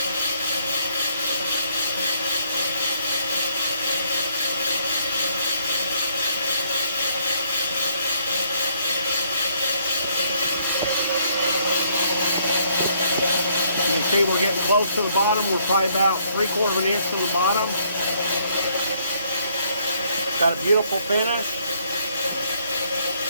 You can see we're getting close to the bottom. We're probably about 3/4 of an inch from the bottom. Got a beautiful finish.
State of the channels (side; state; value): both; inverted; correlation -0.68